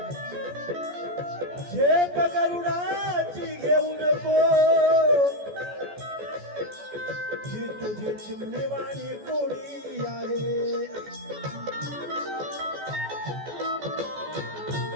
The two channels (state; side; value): late; left; 14 ms